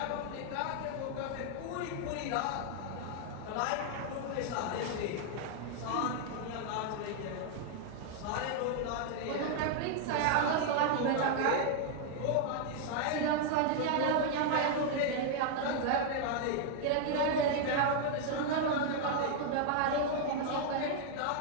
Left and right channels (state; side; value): different; both; correlation 0.00